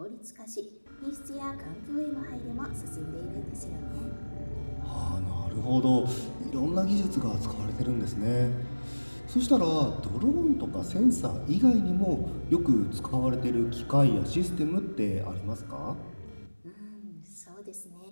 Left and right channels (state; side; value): inverted; both; correlation -1.00